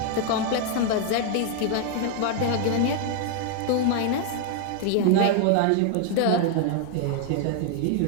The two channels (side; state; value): both; different; correlation 0.00